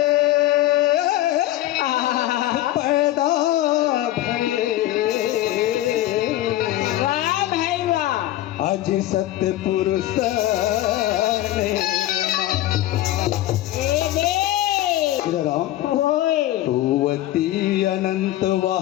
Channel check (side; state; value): right; quieter; 14.7 dB